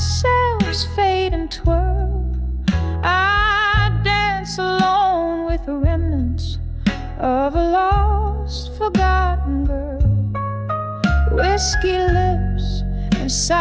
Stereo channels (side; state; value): both; identical; correlation 1.00